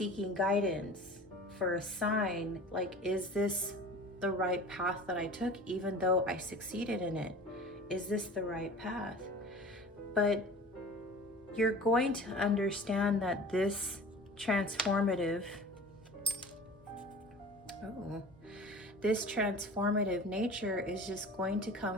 guidance for a sign, like, is this the right path that I took, even though I succeeded in it? Is this the right path? But you're going to understand that this transformative nature is just going to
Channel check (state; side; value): normal; both; correlation 0.39